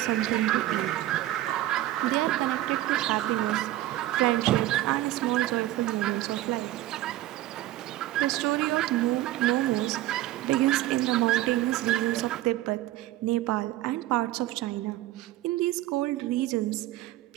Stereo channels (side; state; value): left; quieter; 15.4 dB